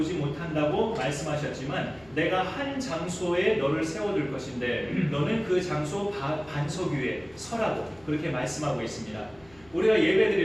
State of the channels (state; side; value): noise; left; hum, 27 dB below the sound